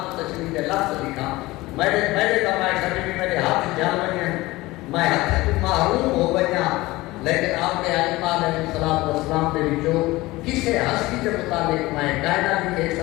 تشریح کے لفظ لکھا میرے کمائے سبھی بھی میرے ہاتھ جان بنیا میں ہاتھ تو محروم ہو بنیا لیکن آپ کے علماء علیہ السلام کے بچوں کسے ہستی کے مطابق میں کہنا لکھے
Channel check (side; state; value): right; quieter; 19.7 dB